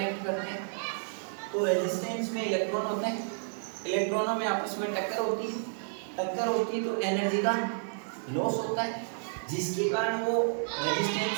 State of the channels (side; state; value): left; silent; 57 dB below the other